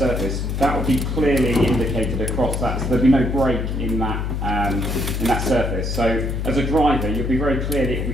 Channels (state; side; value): noise; left; hum, 2 dB below the sound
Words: that would be clearly indicated across that. So there'd be no break in that surface. So as a driver, you'll be very